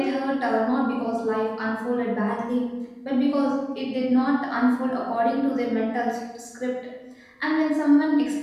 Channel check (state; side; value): identical; both; correlation 1.00